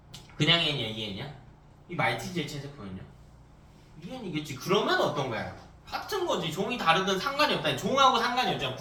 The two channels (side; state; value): both; identical; correlation 1.00